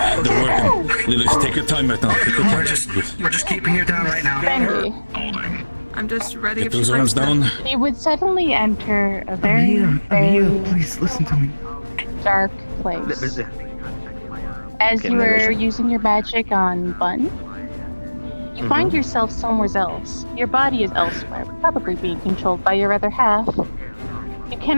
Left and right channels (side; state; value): both; inverted; correlation -1.00